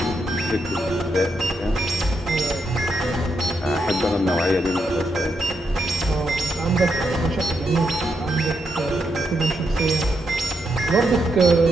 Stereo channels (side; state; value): both; normal; correlation 0.81